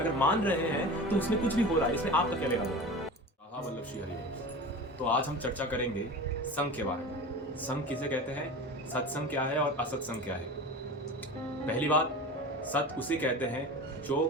मान रहे हैं तो उसमें कुछ भी हो रहा है, इसमें आपका क्या लेना देना? वल्लभ श्री हरिवंश। तो आज हम चर्चा करेंगे संघ के बारे में। संघ किसे कहते हैं, सत्संग क्या है और असत्संग क्या है। पहली बात, सत उसे कहते हैं जो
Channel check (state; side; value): normal; both; correlation 0.32